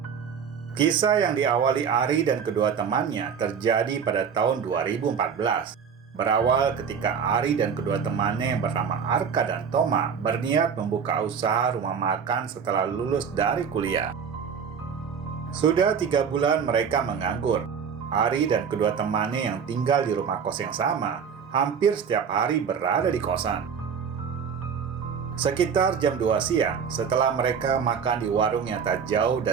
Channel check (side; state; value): left; quieter; 6.8 dB